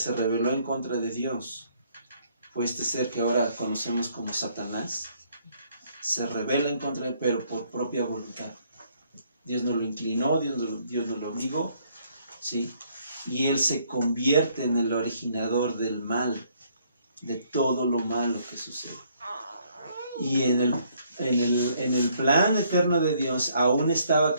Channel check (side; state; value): both; inverted; correlation -0.67